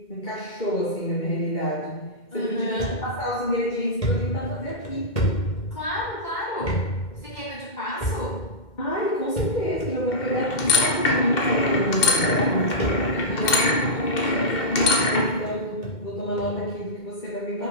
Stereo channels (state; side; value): late; right; 2.1 ms